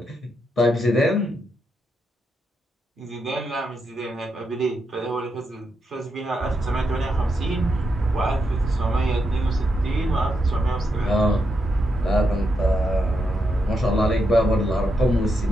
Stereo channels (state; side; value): normal; both; correlation 0.83